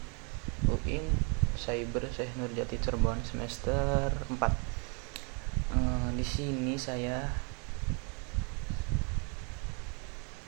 UIN Cyber Syekh Nurjati Cirebon semester 4. Di sini saya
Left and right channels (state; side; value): quieter; left; 35.2 dB